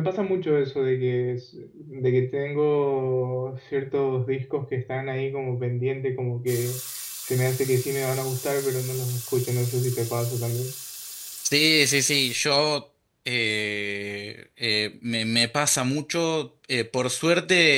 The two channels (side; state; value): both; identical; correlation 1.00